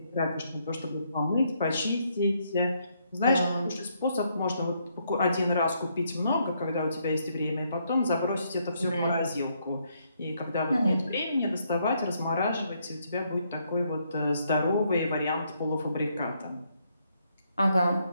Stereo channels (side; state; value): both; inverted; correlation -0.74